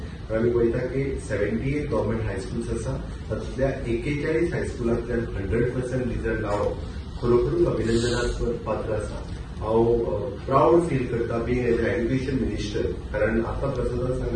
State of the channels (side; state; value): both; identical; correlation 1.00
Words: आमी पळयता की 78 गव्हर्मेंट हायस्कूल्स आसा, तातूंतल्या 41 हायस्कुलांतल्यान 100% रिजल्ट हांव खरोखरूच अभिनंदनाक पात्र आसा. हांव प्राऊड फील करता being as a education minister, कारण आतां प्रसादान